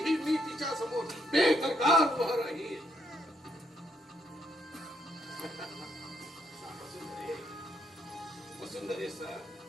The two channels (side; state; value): both; normal; correlation 0.74